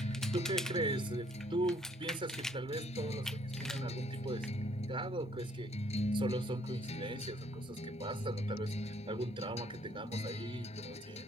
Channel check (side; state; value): both; normal; correlation 0.65